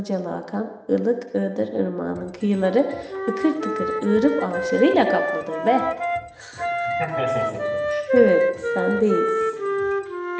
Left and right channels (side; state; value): both; identical; correlation 1.00